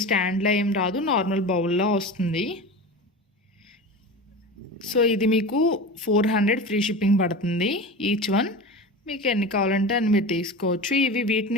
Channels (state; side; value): normal; both; correlation 0.30